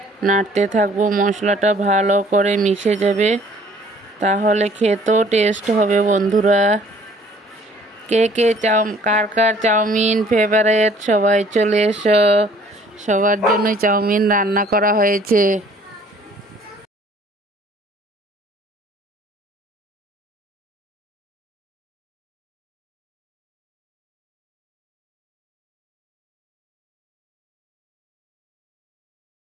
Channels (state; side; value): normal; both; correlation 0.56